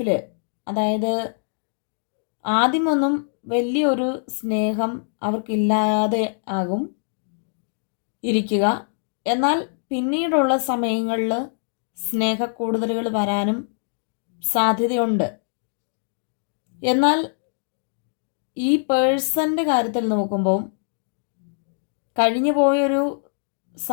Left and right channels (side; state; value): right; silent; digital silence